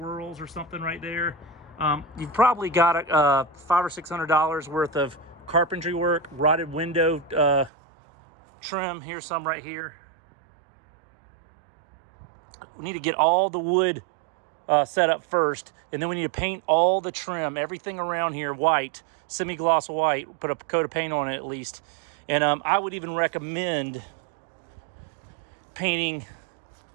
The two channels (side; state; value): left; drops out; at 7.7 s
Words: or something right there. You've probably got $500 or $600 worth of carpentry work, rotted window trim. Here's some right here. We need to get all the wood set up first, and then we need to paint all the trim, everything around here white, semi-gloss white, put a coat of paint on it at least. And I would even recommend painting